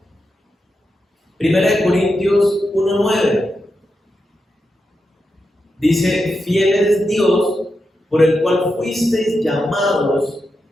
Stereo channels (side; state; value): both; normal; correlation 0.87